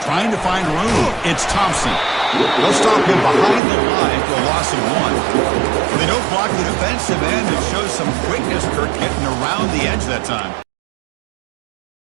Trying to find room. It's Thompson. They'll stop him behind the line for a loss of 1. They don't block the defensive end. It shows some quickness. Kirk getting around the edge that time.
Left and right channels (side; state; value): left; drops out; at 3.6 s